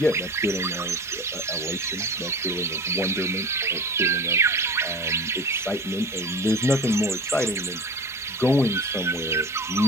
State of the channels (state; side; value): normal; both; correlation 0.35